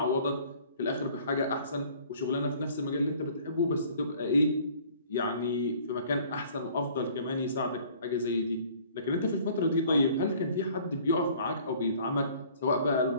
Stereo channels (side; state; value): both; inverted; correlation -0.53